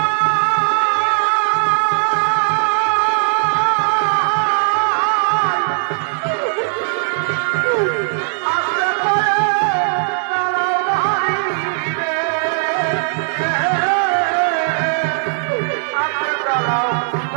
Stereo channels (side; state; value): left; silent; digital silence